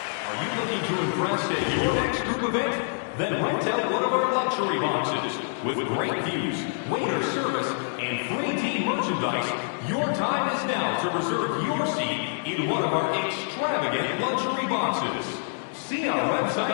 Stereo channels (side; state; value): right; silent; digital silence